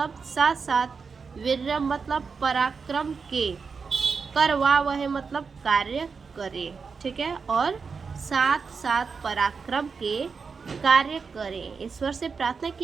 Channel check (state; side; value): quieter; left; 5.3 dB